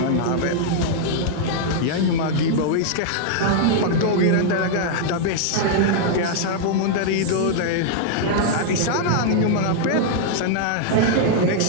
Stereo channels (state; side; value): different; both; correlation -0.01